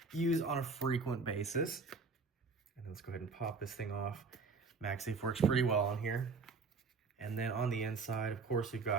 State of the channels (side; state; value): left; quieter; 4.4 dB